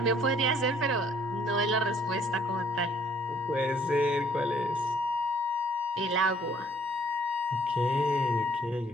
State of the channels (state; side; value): normal; both; correlation 0.61